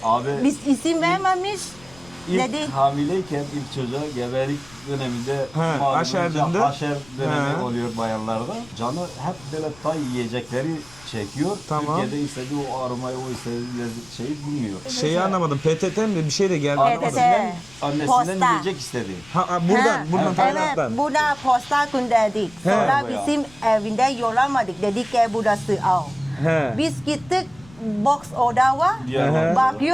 Abi Biz isim vermemiş. ilk Dedi. hamileyken ilk çocuğa gebelik döneminde Ha, malum aşer önce döndü. haşer dönemi Ha. oluyor bayanlarda. Canı hep böyle tay yiyecekleri çekiyor. Tamam. Türkiye'de istediği o aromayı, o istediği şeyi bulmuyor. Şeyi anlamadım. PTT mi? Bir şey de geldi. PTT. Anlamadım. Annesinden Posta. yiyecek istedi. Ha, buradan, Ha, buradan evet, Tayland'dan. burada posta gönderdik. Sonra Bayağı. bizim evinde yollamadık. Dedik ki burası al. He. Biz gittik box orada var. Diyarbakır'da.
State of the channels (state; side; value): noise; left; rumble, 24 dB below the sound